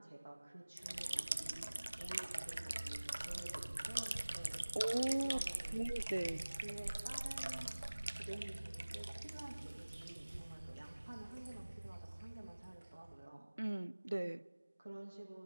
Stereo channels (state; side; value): inverted; both; correlation -1.00